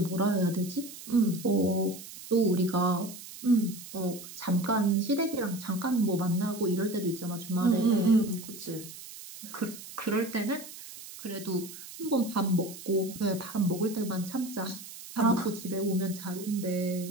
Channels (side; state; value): right; noise; hiss, 14 dB below the sound